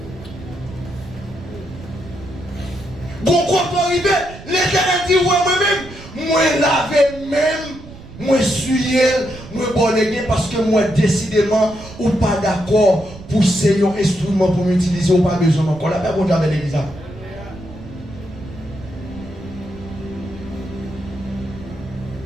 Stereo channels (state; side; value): noise; right; rumble, 16 dB below the sound